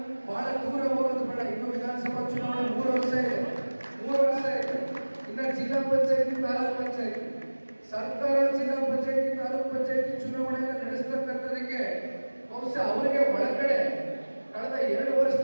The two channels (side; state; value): both; inverted; correlation -1.00